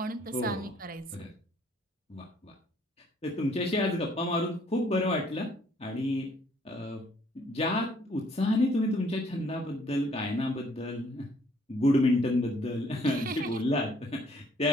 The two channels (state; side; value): normal; both; correlation 0.63